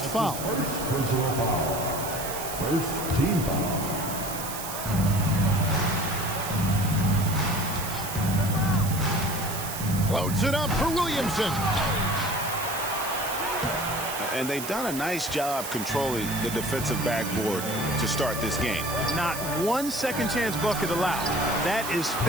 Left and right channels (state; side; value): noise; right; hiss, 8 dB below the sound